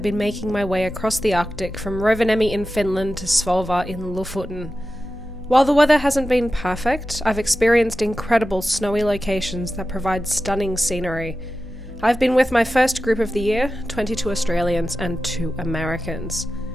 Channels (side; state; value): both; normal; correlation 0.93